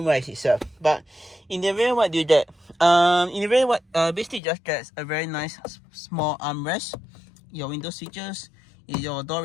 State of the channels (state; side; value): drops out; right; at 4.4 s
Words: wise itself. But in the rear, what do you get? In the rear, what basically just gets a very nice small armrest, your window switches, your door